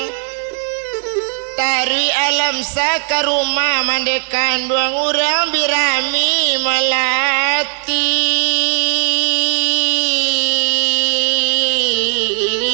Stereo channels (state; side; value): silent; left; 57 dB below the other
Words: Tarui alam sa ke rumah mandekan doang orang birami melati.